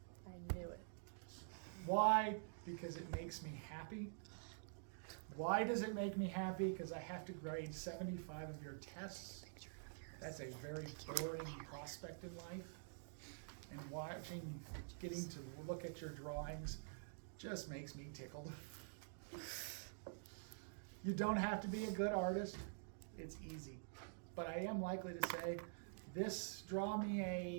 I knew it. Why? Because it makes me happy. Why does it make me happy? Because I have to grade 75 of your tests. That's a very boring prospect in life. And getting to look at your drawings just makes me tickled. You don't have to be a good artist. It's easy. But I am likely to say, draw me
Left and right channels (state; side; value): silent; left; digital silence